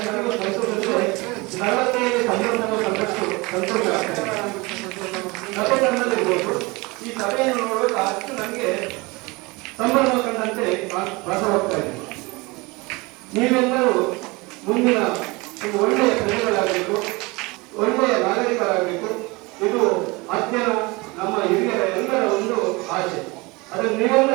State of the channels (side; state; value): left; quieter; 24.8 dB